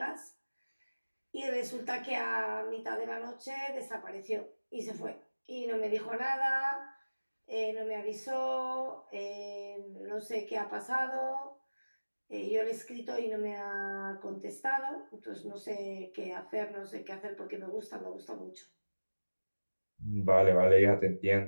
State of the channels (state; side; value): inverted; both; correlation -1.00